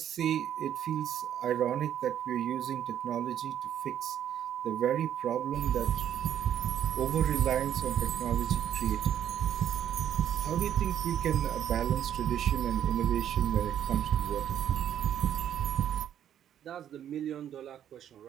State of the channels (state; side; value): quieter; left; 10.2 dB